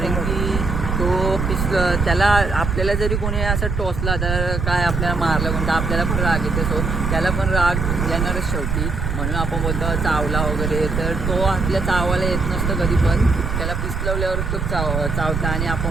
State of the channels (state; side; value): noise; right; rumble, 2 dB below the sound